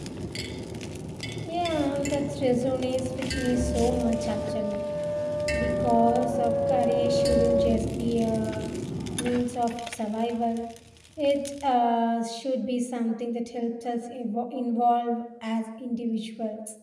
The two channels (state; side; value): identical; both; correlation 1.00